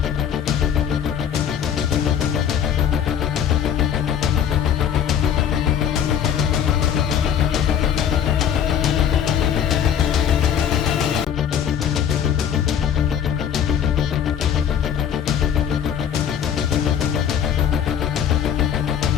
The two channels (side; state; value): right; quieter; 8.8 dB